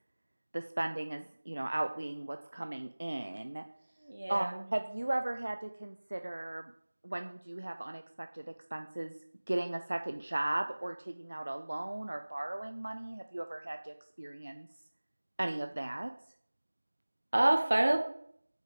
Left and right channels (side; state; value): both; inverted; correlation -1.00